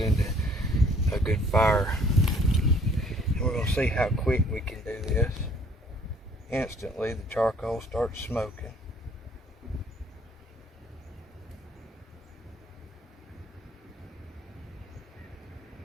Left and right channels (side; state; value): both; normal; correlation 0.59